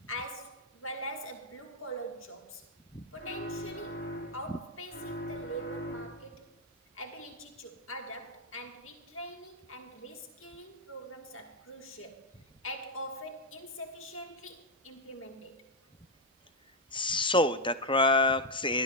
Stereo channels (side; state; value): both; normal; correlation 0.03